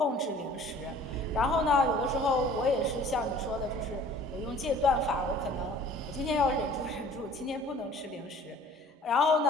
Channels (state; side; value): normal; both; correlation 0.50